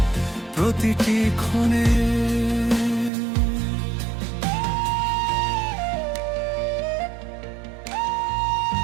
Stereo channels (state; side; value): drops out; left; at 3.1 s